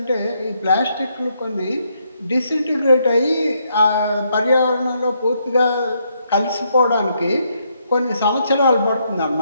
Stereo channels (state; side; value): inverted; both; correlation -0.75